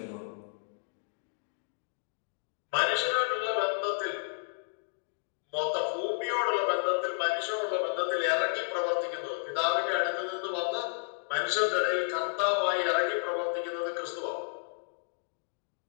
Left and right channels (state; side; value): silent; right; digital silence